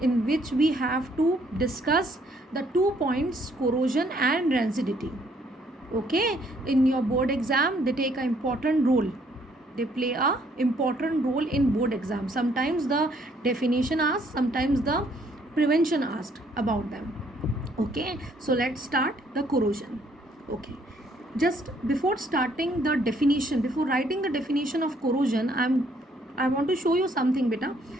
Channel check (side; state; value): both; normal; correlation 0.66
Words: in which we have to discuss the 2 points, corrosion and rancidity. Okay, in your board exam they take an important role. They play a important role in board exam. Sometimes the definition asked, sometimes the prevention asked about them. Okay, so let's start the corrosion. Okay, just before starting the definition, before writing the definition of corrosion, I want to show you something, beta.